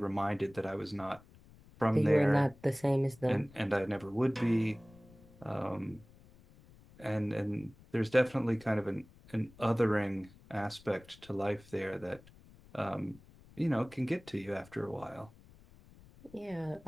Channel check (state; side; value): noise; left; rumble, 24 dB below the sound